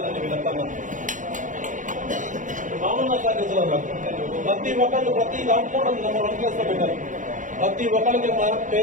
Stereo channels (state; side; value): late; left; 0.37 ms